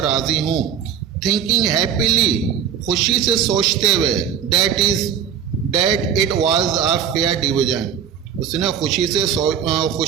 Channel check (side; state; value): left; quieter; 8.3 dB